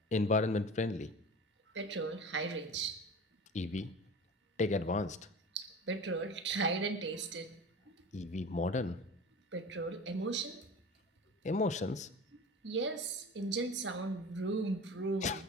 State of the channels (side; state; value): both; normal; correlation 0.36